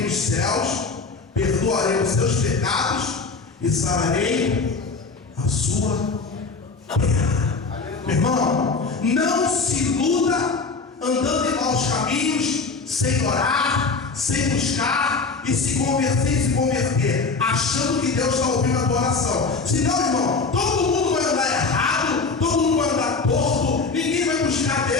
nos céus, perdoarei os seus pecados e sararei a sua terra. Meu irmão, não se iluda andando em maus caminhos, sem orar, sem buscar e se converter, achando que Deus está ouvindo a tua oração. Senão, irmão, todo mundo vai andar errado, todo mundo vai andar torto, ninguém vai buscar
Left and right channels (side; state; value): right; quieter; 4.3 dB